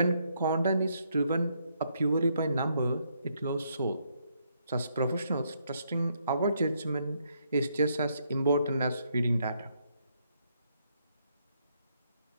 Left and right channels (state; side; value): inverted; both; correlation -0.74